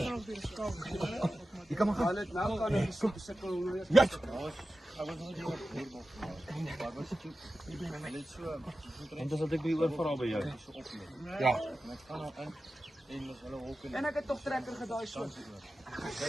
Je kan maar gaan. Ja! En dan zat ik weer vooral bij jou. Ja. En ek het toch trekker gedaai so.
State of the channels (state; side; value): normal; both; correlation 0.93